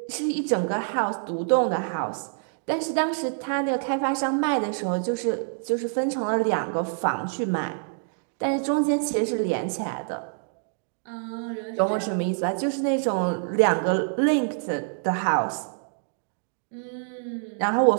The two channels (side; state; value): left; silent; digital silence